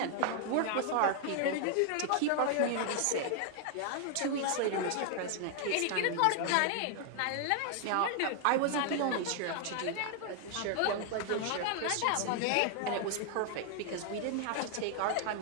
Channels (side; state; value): both; different; correlation 0.00